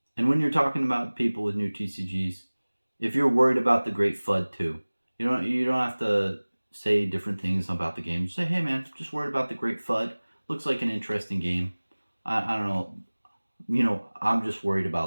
And when you're talking about people with new TCGs, if you're worried about the great FUD too, you don't have to say different things about the game. Just say, hey man, just worried about the great FUD. Looks like an interesting game. I don't know. I'm just worried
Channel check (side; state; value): both; inverted; correlation -1.00